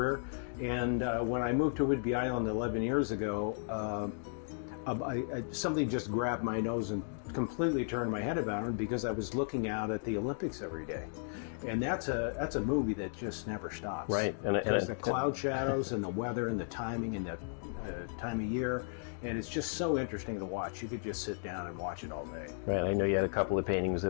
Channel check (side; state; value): right; silent; digital silence